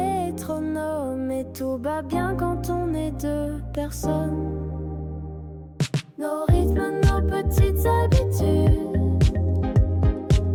et tout va bien quand on est deux personnes. Nos rythmes, nos petites habitudes,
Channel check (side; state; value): both; identical; correlation 1.00